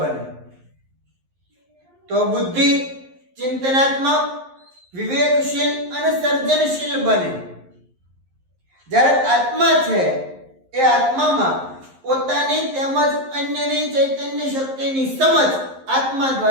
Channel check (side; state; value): left; late; 11 ms